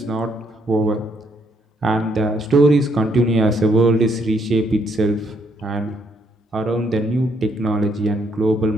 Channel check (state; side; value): normal; both; correlation 0.72